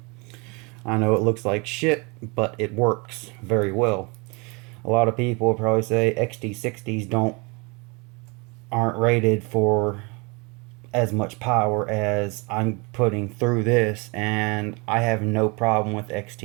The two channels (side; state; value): left; quieter; 29.4 dB